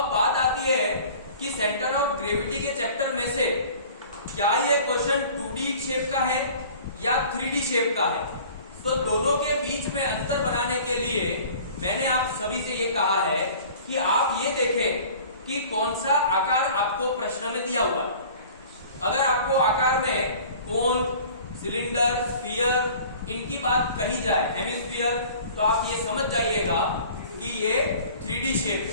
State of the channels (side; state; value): both; inverted; correlation -0.46